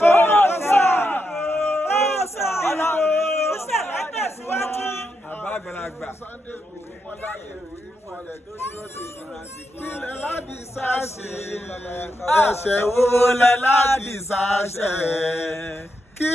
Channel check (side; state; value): both; normal; correlation 0.84